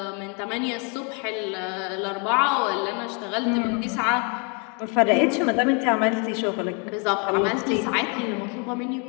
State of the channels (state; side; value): quieter; right; 35.4 dB